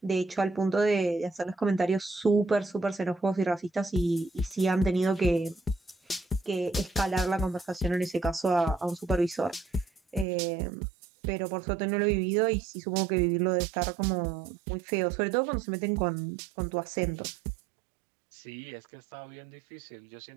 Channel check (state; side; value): drops out; left; at 10.2 s